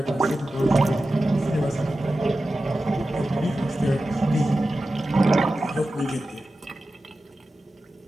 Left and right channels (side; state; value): both; normal; correlation 0.94